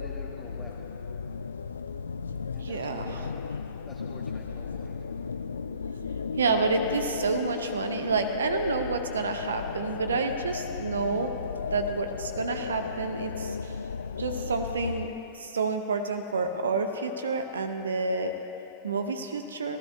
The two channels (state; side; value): inverted; both; correlation -0.58